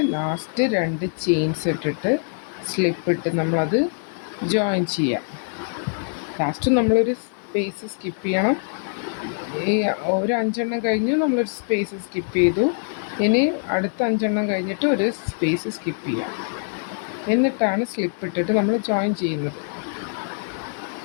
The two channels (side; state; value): right; silent; 63 dB below the other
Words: ലാസ്റ്റ് 2 ചെയിൻസ് ഇട്ടിട്ട് സ്ലിപ്പ് ഇട്ട് നമ്മളത് ജോയിൻ ചെയ്യാം. ലാസ്റ്റ് നമ്മളൊരു സ്പേസ് സ്കിപ്പ് ചെയ്യണം. ഈ ഒരു 5 എണ്ണം കഴിഞ്ഞ് നമ്മളൊരു സ്പേസ് സ്കിപ്പ് ചെയ്തു. ഇനി അടുത്ത 5 എണ്ണം കഴിഞ്ഞിട്ട് ഒരു സ്പേസ് സ്കിപ്പ് ചെയ്യാം. എന്നിട്ടാണ് സ്ലിപ്പ് ഇട്ടിട്ട് നമ്മൾ ജോയിൻ ചെയ്യുന്നത്.